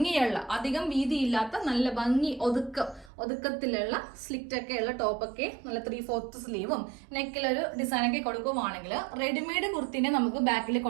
അധികം വീതിയില്ലാത്ത നല്ല ഭംഗി ഒതുക്കത്തിലുള്ള സ്ലിറ്റ് ഒക്കെ ഉള്ള ടോപ്പൊക്കെ, നല്ല 3/4 സ്ലീവും നെക്കിലൊരു ഡിസൈനൊക്കെ കൊടുക്കുവാണെങ്കിൽ റെഡിമെയ്ഡ് കുർത്തിനെ നമുക്ക് ബാക്കിൽ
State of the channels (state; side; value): drops out; left; at 3.1 s